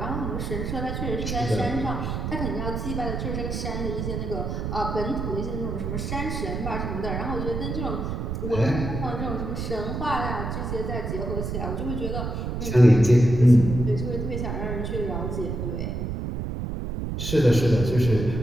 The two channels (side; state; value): right; noise; rumble, 3 dB below the sound